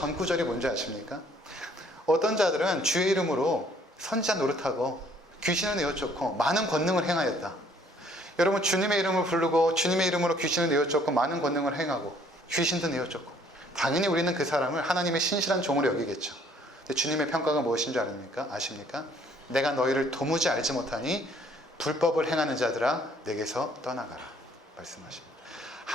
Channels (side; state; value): both; normal; correlation 0.61